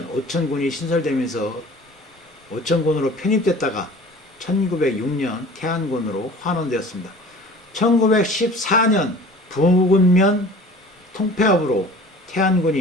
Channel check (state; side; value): normal; both; correlation 0.44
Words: 오천군이 신설되면서 오천군으로 편입됐다가 1906년 태안군으로 환원되었습니다. 1914년 부군면 통폐합으로